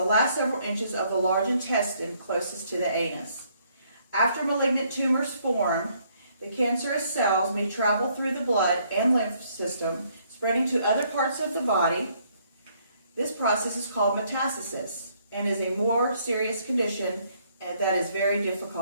last several inches of the large intestine closest to the anus. After malignant tumors form, the cancerous cells may travel through the blood and lymph system, spreading to other parts of the body. This process is called metastasis and is a more serious condition that is very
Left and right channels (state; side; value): inverted; both; correlation -0.67